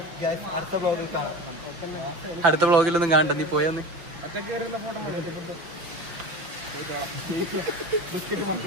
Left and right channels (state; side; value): late; left; 6.0 ms